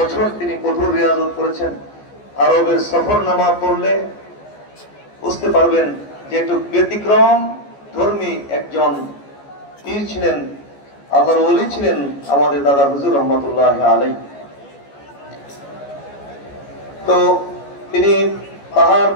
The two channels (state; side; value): late; right; 14 ms